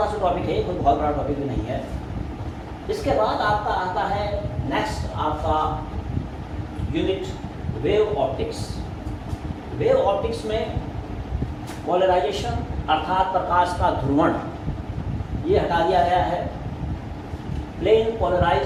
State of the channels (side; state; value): both; identical; correlation 1.00